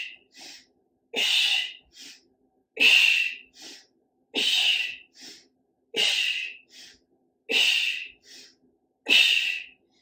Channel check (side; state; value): both; identical; correlation 1.00